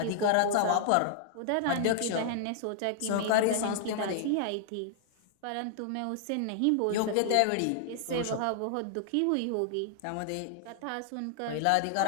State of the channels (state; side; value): different; both; correlation 0.00